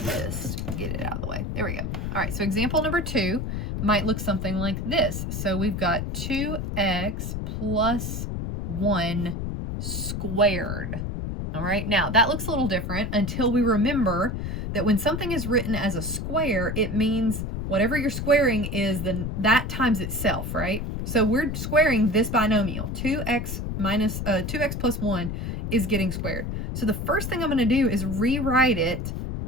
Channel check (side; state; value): left; noise; rumble, 4 dB below the sound